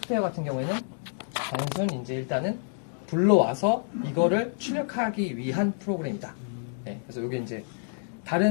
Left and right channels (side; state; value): right; silent; digital silence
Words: 같은 경우에는 단순 이제 일단은 불러와서 이거를 출력하기 위한 프로그램이다. 네, 그래서 이게 이제